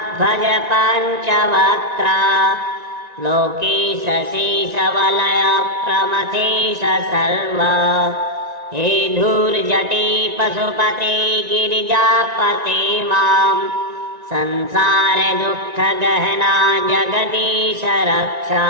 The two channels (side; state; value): left; late; 1.9 ms